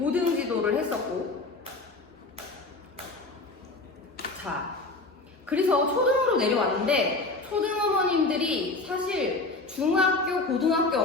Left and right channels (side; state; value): right; quieter; 3.3 dB